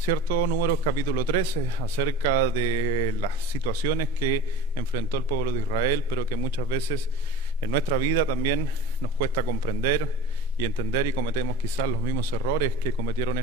Números capítulo 13, acerca de las situaciones que enfrentó el pueblo de Israel, pero que muchas veces en nuestra vida también nos cuesta comprender y entender, y cometemos quizás los mismos errores que cometieron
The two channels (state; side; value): normal; both; correlation 0.38